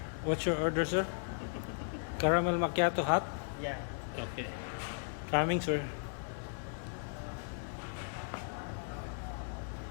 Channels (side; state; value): right; silent; digital silence